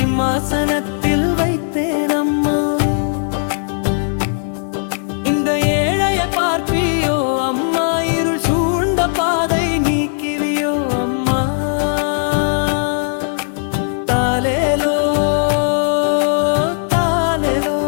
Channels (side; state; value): right; silent; digital silence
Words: வைத்தேன் அம்மா இந்த ஏழையை பார்ப்பியோ அம்மா இருள் சூழ்ந்த பாதை நீக்கிவியோ அம்மா தாலேலோ தாலேலோ